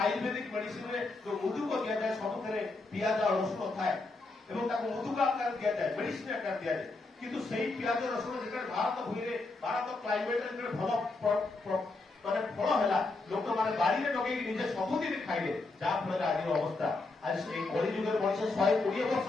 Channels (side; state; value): right; quieter; 3.4 dB